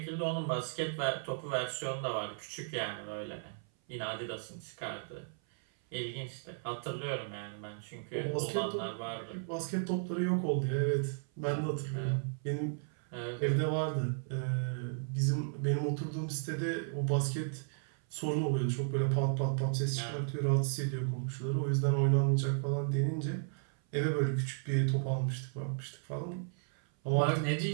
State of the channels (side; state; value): left; silent; 55 dB below the other